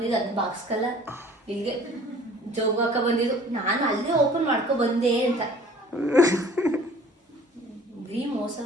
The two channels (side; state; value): both; normal; correlation 0.51